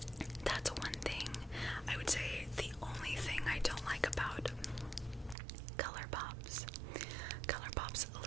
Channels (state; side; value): drops out; left; at 5.4 s